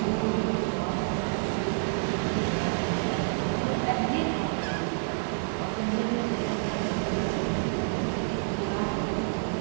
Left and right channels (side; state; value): left; silent; digital silence